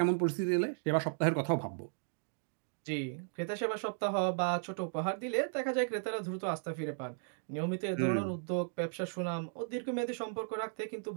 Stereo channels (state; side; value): silent; left; digital silence